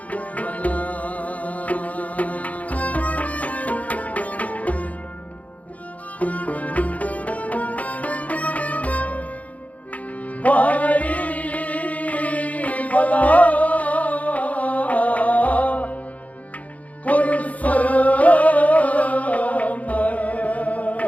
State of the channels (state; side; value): late; right; 0.070 ms